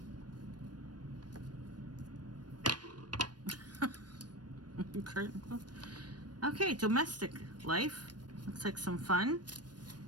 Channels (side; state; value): left; late; 0.69 ms